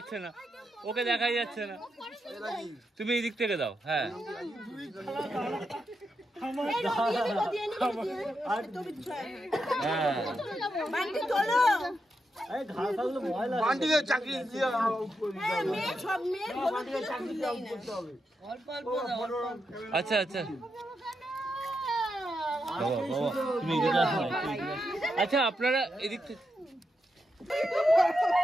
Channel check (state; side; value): normal; both; correlation 0.85